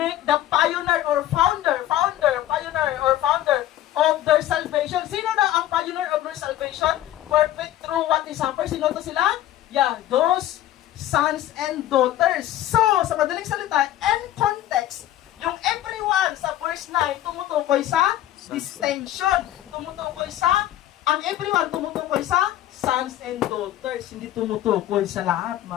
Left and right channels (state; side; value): quieter; right; 13.3 dB